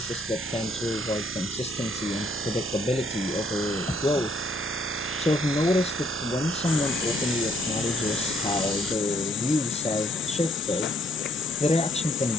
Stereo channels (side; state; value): both; normal; correlation 0.67